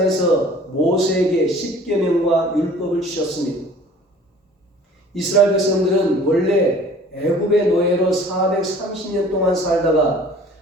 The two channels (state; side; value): normal; both; correlation 0.49